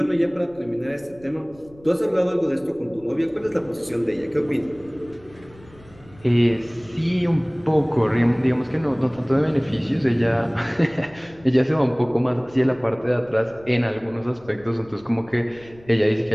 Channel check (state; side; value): noise; left; rumble, 24 dB below the sound